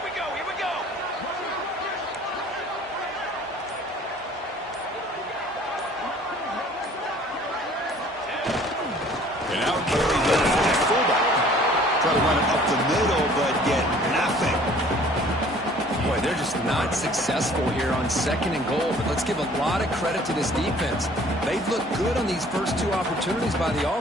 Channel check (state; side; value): normal; both; correlation 0.53